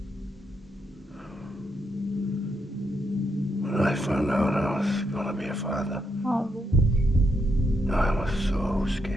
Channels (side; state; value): both; normal; correlation 0.79